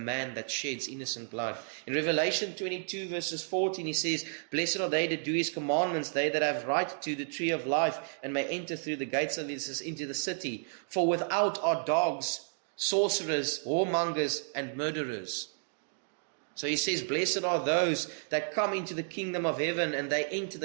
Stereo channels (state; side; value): silent; left; digital silence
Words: that sheds innocent blood. In Revelation 22 verses 14 He says, blessed are they that do His commandments, they that have right to the tree of life, and may enter through the gates of this into the city. For without are dogs, sorcerers, whoremongers, and murderers. So He says, blessed are those that come into the kingdom of heaven, and they enter